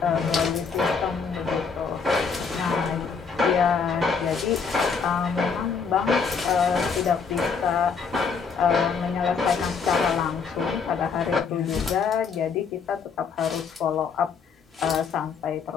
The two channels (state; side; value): quieter; right; 5.6 dB